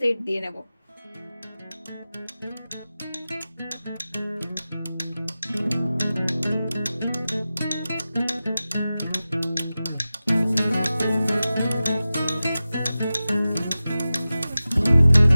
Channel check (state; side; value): inverted; both; correlation -0.95